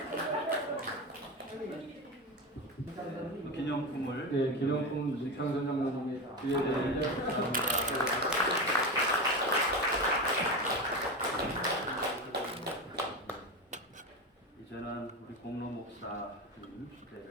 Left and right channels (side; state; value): both; normal; correlation 0.20